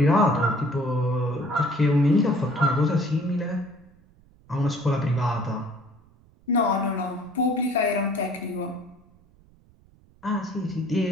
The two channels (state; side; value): noise; right; rumble, 29 dB below the sound